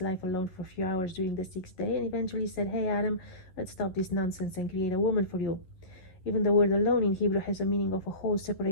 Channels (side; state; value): right; late; 11 ms